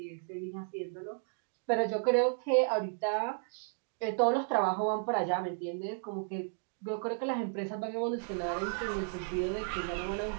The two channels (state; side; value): silent; left; 55 dB below the other